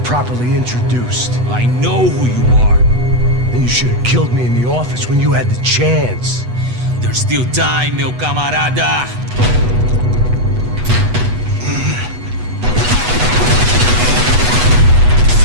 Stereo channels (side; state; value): left; late; 8.1 ms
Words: properly introduced. I know who you are. Then you should have killed me in the office when you had the chance. There's still time, meu camarada!